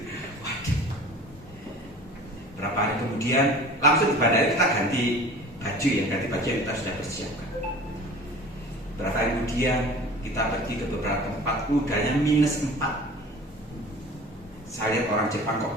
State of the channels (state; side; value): normal; both; correlation 0.42